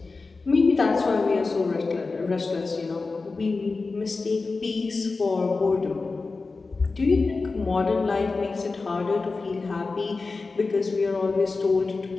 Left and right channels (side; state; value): right; quieter; 3.9 dB